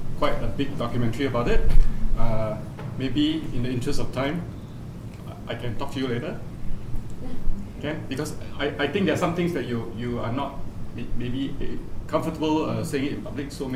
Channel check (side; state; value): both; identical; correlation 1.00